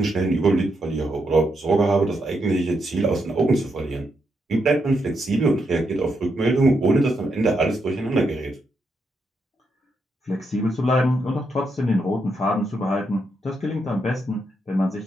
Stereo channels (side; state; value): both; normal; correlation 0.81